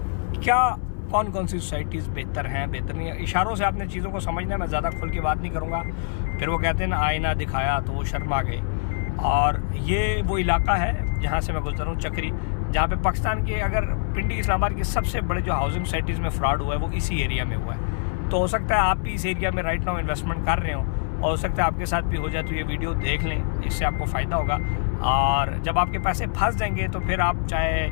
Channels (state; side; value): silent; right; 62 dB below the other